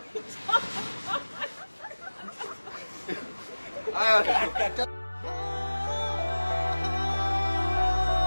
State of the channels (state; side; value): inverted; both; correlation -1.00